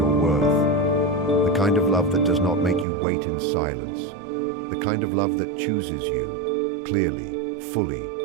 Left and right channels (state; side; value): drops out; left; at 2.9 s